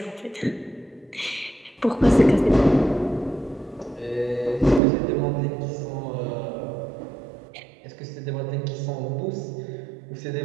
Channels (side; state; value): left; drops out; at 4.8 s